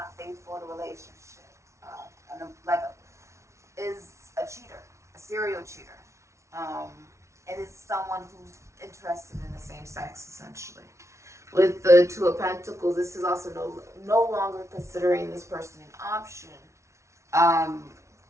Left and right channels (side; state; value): left; late; 0.14 ms